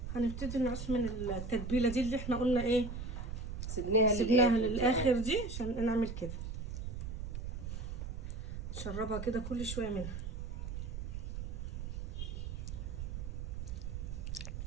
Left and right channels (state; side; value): noise; right; rumble, 5 dB below the sound